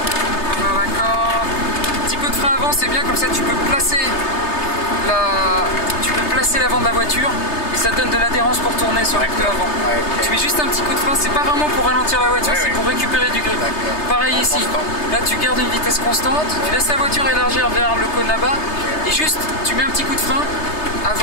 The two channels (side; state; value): right; late; 3.3 ms